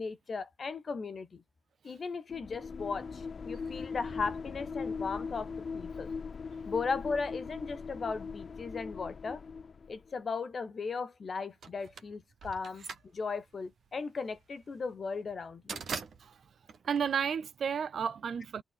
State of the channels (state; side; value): normal; both; correlation 0.83